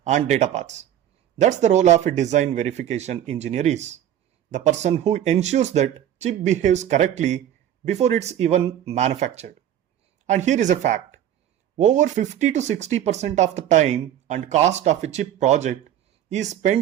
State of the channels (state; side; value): quieter; left; 10.9 dB